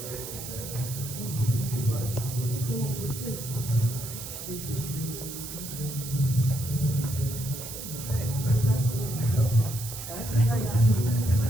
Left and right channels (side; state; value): right; noise; hiss, 9 dB below the sound